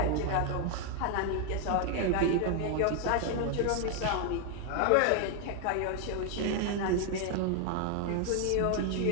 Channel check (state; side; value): different; both; correlation 0.00